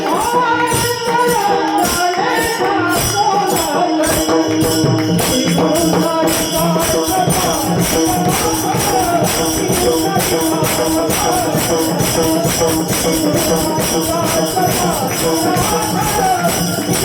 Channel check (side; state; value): both; identical; correlation 1.00